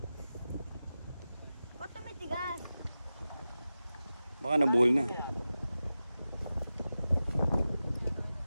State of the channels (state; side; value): inverted; both; correlation -0.94